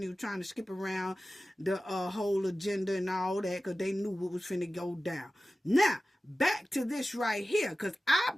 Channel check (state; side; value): normal; both; correlation 0.95